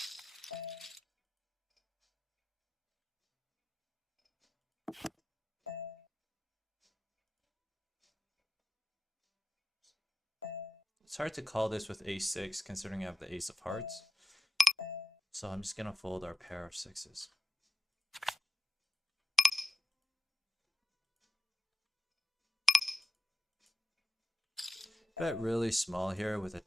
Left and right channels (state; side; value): normal; both; correlation 0.93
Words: It's hard to call this with ace-6 considering I have the ace of hearts. So I'm just going to fold our pair of sixes. Bet really small here with a